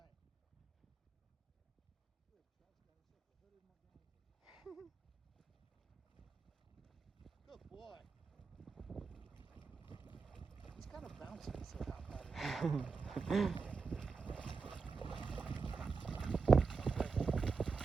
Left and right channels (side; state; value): left; quieter; 4.9 dB